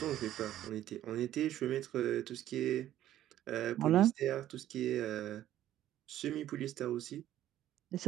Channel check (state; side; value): quieter; left; 12.6 dB